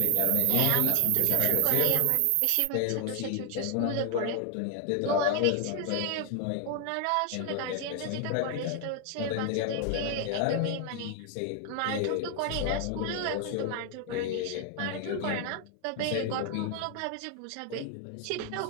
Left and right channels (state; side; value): different; both; correlation 0.00